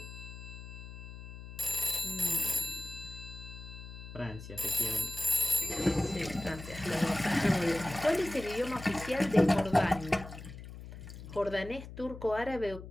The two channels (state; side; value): noise; left; hum, 12 dB below the sound